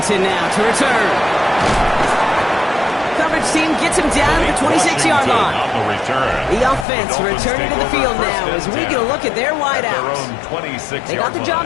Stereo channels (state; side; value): drops out; right; at 6.9 s